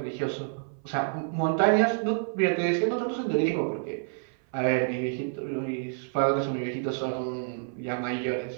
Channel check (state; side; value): silent; left; 59 dB below the other